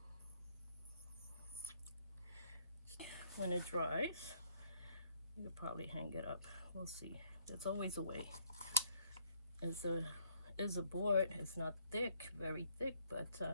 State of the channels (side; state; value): both; inverted; correlation -0.65